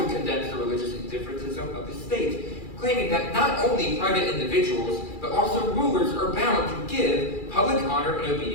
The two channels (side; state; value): right; late; 2.4 ms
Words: condemns the religious indifferentism of the state, claiming that not only private individuals, but also rulers are bound to give public honor and